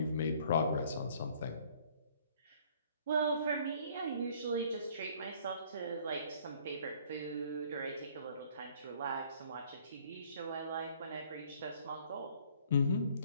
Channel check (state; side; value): inverted; both; correlation -0.58